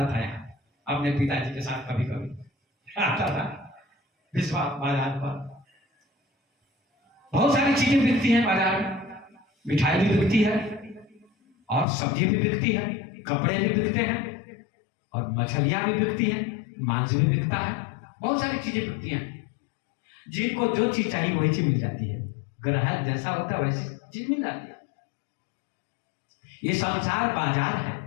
था, यहाँ अपने पिताजी के साथ कभी कभी आता था भिस्बा बाजार पर। बहुत सारी चीजें बिकती हैं बाजार में। मिठाई भी बिकती है, और सब्जी भी बिकती है, कपड़े भी बिकते हैं, और मछलियां भी बिकती हैं, मांस भी बिकता है। बहुत सारी चीजें बिकती हैं। जिनको जो चीज चाहिए वही चीज मिल जाती है। ग्राहक जैसा होता है वैसी चीज मिल जाती है। ये संसार बाजार है,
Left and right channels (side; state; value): right; drops out; at 11.9 s